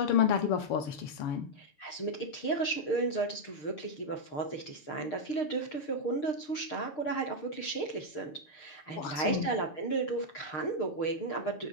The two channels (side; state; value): right; late; 6.6 ms